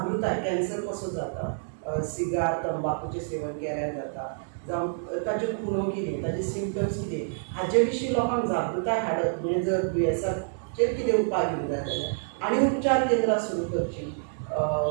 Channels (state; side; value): silent; left; digital silence